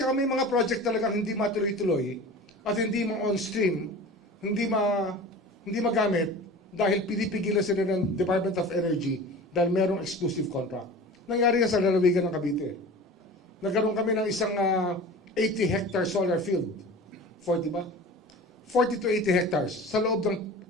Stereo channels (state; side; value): normal; both; correlation 0.37